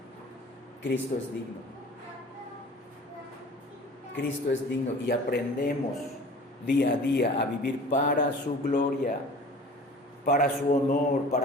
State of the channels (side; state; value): both; normal; correlation 0.44